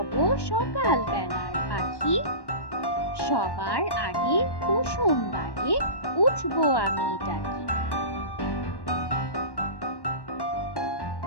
সকাল বেলার পাখি, সবার আগে কুসুম বাগে উঠবো আমি ডাকি।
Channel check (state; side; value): late; right; 1.1 ms